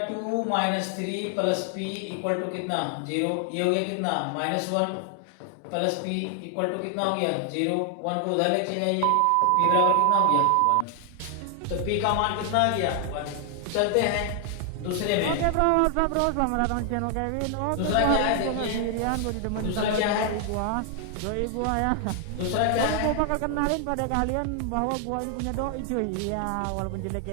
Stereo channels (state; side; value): different; both; correlation 0.00